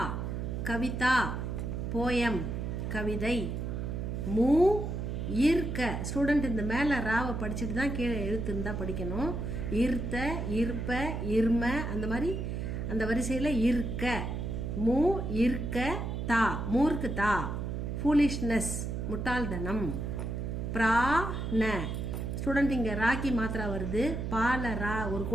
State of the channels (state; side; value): noise; right; hum, 3 dB below the sound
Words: kavita, poem, கவிதை. மூ ஈர்க்க ஸ்டூடெண்ட் இந்த மேலே ராவை படிச்சுட்டு தான் கீழே எழுத்து இருந்தால் படிக்கணும். ஈர்த்த, ஈர்ப்ப, இர்ம அந்த மாதிரி அந்த வரிசையில் இருக்க. மூ ஈர்க்க தா மூர்க்கு தா. ஃபூலிஷ்னஸ் முட்டாள்தனம். பிராண ஸ்டூடெண்ட் இங்கே ராக்கி மாத்திரா வருது. பால ரா ஒரு